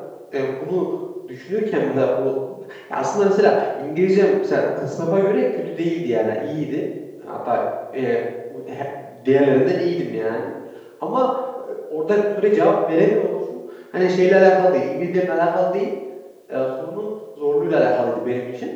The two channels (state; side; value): identical; both; correlation 1.00